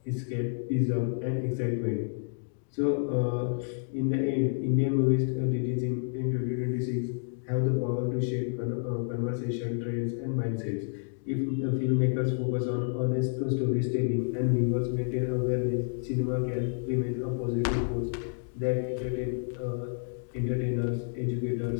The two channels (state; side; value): silent; right; digital silence